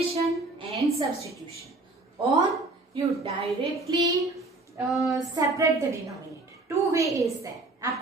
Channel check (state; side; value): quieter; left; 3.1 dB